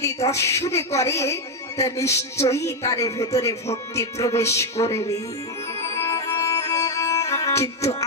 দর্শন করে, তা নিশ্চয়ই তার ভেতরে ভক্তি প্রবেশ করবে। কিন্তু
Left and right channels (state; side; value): normal; both; correlation 0.04